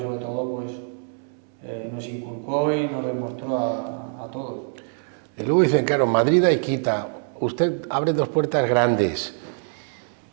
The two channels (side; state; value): left; silent; 62 dB below the other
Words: sobre todo, pues nos inculcó y nos demostró a todos. Y luego dicen, claro, Madrid hay quita, usted abre 2 puertas grandes